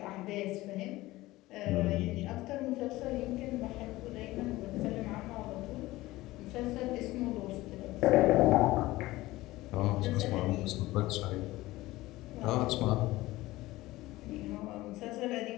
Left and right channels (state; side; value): quieter; right; 18.3 dB